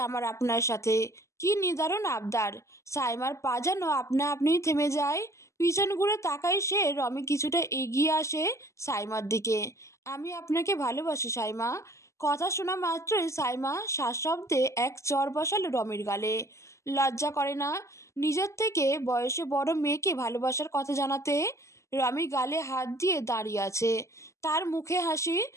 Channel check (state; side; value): late; right; 0.14 ms